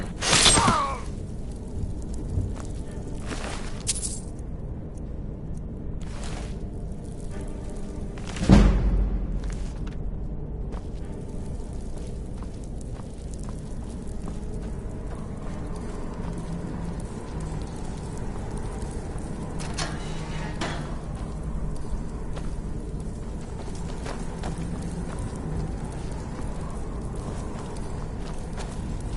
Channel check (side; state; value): both; identical; correlation 1.00